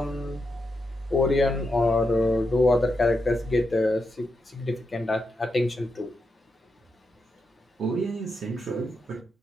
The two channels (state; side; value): normal; both; correlation 0.85